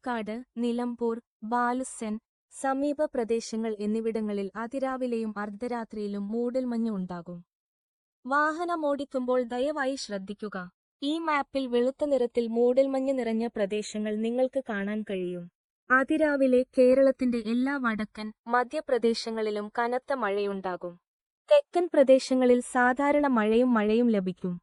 നിലമ്പൂർ, ബാലുസ്സൻ, സമീപ പ്രദേശങ്ങൾ എന്നിവിടങ്ങളിൽ അതിരാവിലെയും അർദ്ധരാത്രിയിലും മൂടൽമഞ്ഞ് ഉണ്ടാകും. വാഹനമോടിക്കുമ്പോൾ ദയവായി ശ്രദ്ധിക്കുക. ഈ മാപ്പിൽ വെളുത്ത നിറത്തിൽ മൂടൽമഞ്ഞ് നിറഞ്ഞ പ്രദേശങ്ങൾ നിങ്ങൾക്ക് കാണാൻ കഴിയും. അതിരാവിലെ കേരളത്തിന്റെ എല്ലാ വടക്കൻ, മധ്യപ്രദേശങ്ങളിലും കനത്ത മഴയുണ്ടാകും. തെക്കൻ പ്രദേശങ്ങളിൽ സാധാരണ മഴയും ലഭിക്കും.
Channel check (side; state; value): both; identical; correlation 1.00